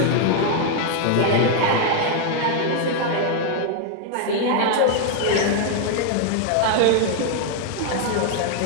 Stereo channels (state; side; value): different; both; correlation 0.00